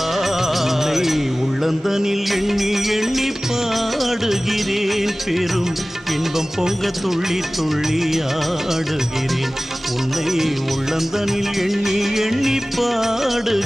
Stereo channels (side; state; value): both; normal; correlation 0.98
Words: உள்ளந்தனில் எண்ணி எண்ணி பாடுகிறேன், பெரும் இன்பம் பொங்க துள்ளி துள்ளி ஆடுகிறேன். உன்னை உள்ளந்தனில் எண்ணி எண்ணி